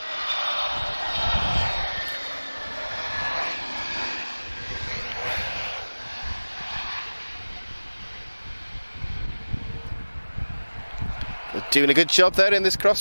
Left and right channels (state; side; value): inverted; both; correlation -1.00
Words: Doing a good job there in this